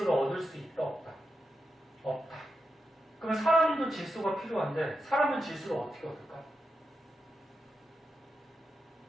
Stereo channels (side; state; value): both; normal; correlation 0.87